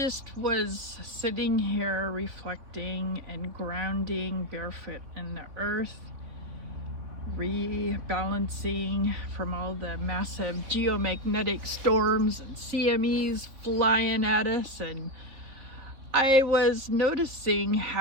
was sitting here reflecting and grounding barefoot in the earth, rebalancing from all the massive geomagnetic storms and CMEs flying at us. And I was noticing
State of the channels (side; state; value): left; late; 3.7 ms